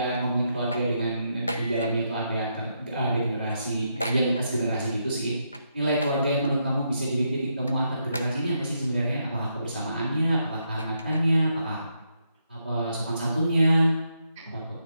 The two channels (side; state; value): both; inverted; correlation -0.80